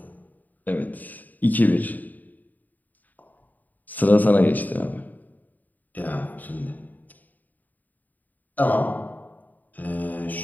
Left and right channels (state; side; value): late; right; 0.083 ms